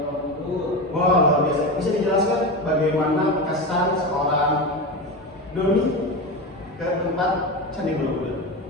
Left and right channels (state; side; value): normal; both; correlation 0.21